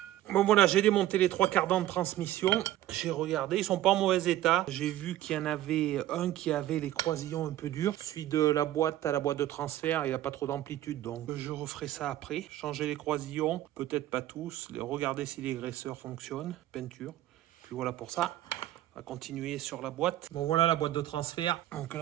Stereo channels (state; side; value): quieter; left; 13.9 dB